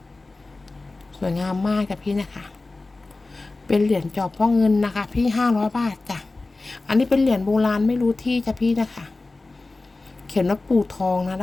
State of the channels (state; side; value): quieter; right; 3.3 dB